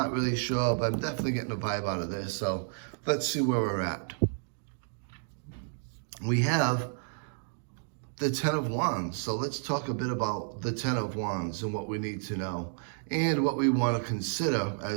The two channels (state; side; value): silent; left; digital silence